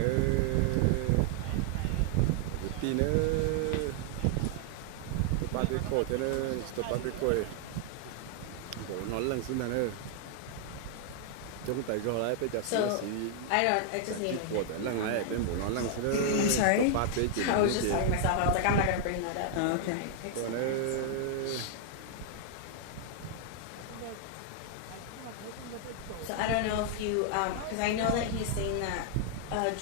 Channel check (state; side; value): different; both; correlation 0.00